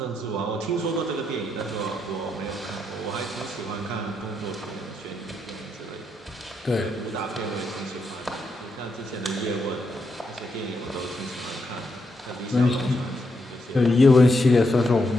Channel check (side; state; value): both; normal; correlation 0.81